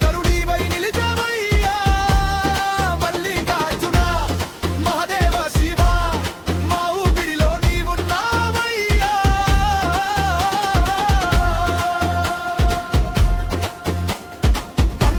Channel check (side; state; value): both; identical; correlation 1.00